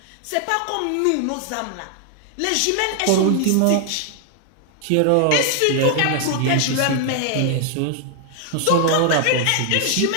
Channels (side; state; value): both; different; correlation 0.00